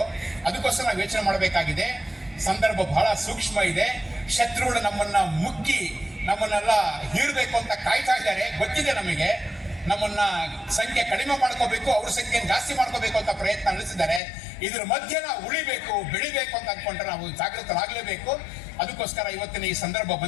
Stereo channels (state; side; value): drops out; right; at 14.2 s